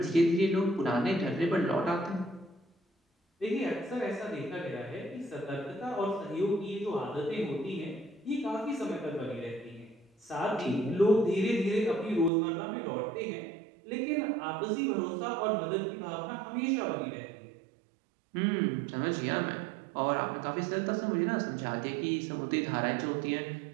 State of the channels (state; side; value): drops out; left; at 12.3 s